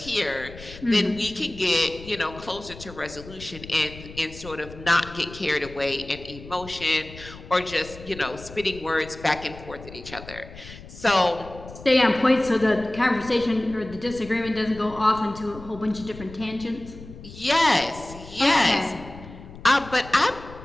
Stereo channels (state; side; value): noise; left; rumble, 16 dB below the sound